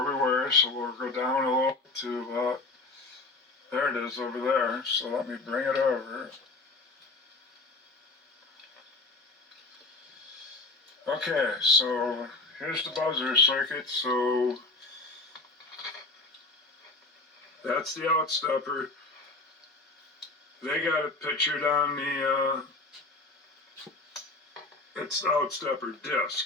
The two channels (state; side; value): quieter; right; 3.2 dB